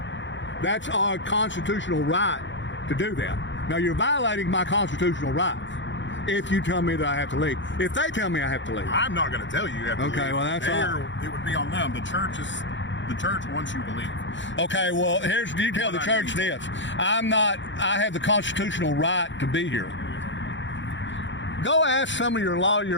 That's our constitutional right to do that. Now, you're violating my constitutional rights if you tell me that I have to leave. If they tell me I have to leave. I'm not going to tell you you have to leave. Okay, well, that's all. It would be on them. The church wants you to leave. Okay, well, you tell the church this. I have the constitutional right to be here. Go ask some of your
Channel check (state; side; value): late; right; 0.54 ms